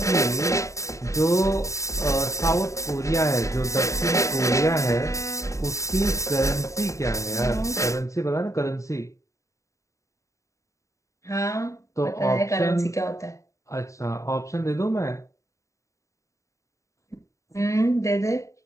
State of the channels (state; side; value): late; right; 0.15 ms